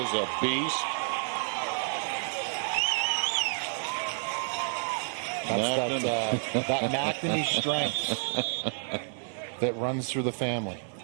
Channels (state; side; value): silent; left; digital silence